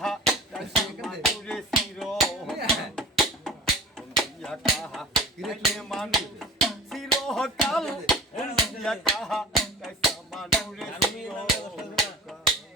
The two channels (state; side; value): normal; both; correlation 0.38